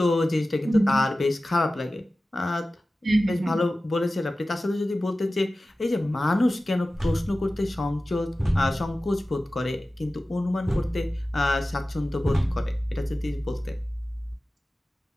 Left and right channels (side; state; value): both; normal; correlation 0.95